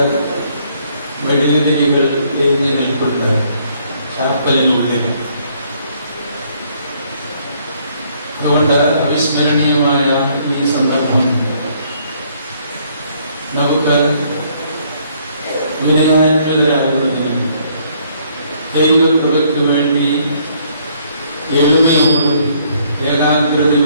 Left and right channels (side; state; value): both; inverted; correlation -0.66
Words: വെടിയുതിരികൾ എരിഞ്ഞു നിൽപ്പുണ്ട് ചാപ്പലിനുള്ളിൽ. അതുകൊണ്ട് അവിസ്മരണീയമായ ഈ സന്ദർഭം നമുക്ക് വിനയാനികളാകുന്നതിനും ദൈവകൃപയ്ക്ക് വേണ്ടി എളിമയോടും